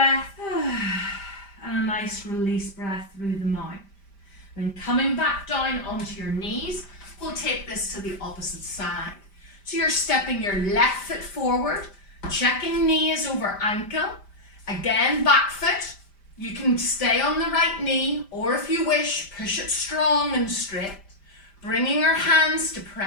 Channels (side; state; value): right; late; 5.1 ms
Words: and a nice release breath through the mouth. Then coming back down onto your knees, we'll take this to the opposite side. So you're stepping your left foot forward, checking knee is over ankle. Again, back foot, You can stay on the right knee, or if you wish, push it strong and straight, bringing your hands to